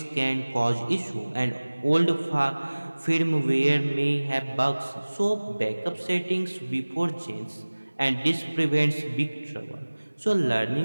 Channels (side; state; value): both; inverted; correlation -1.00